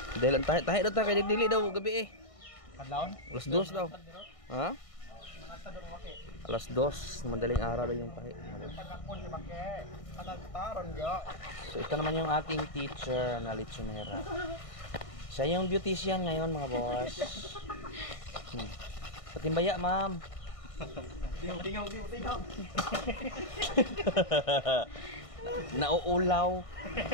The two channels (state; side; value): late; right; 1.6 ms